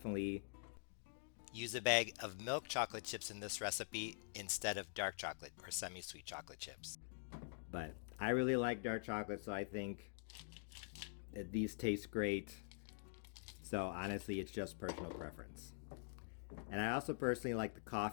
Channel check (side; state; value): right; silent; digital silence